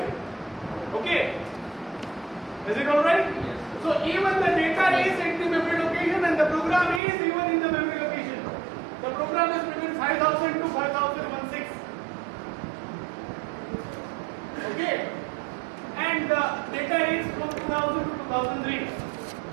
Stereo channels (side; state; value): left; drops out; at 7.0 s